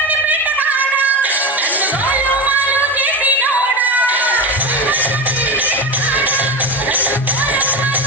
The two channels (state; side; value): normal; both; correlation 0.21